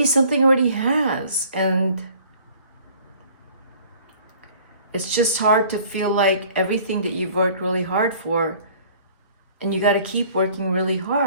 something already has, and it's just hard to feel like everything that you've worked really hard for, and you got to keep working really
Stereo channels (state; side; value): inverted; both; correlation -0.52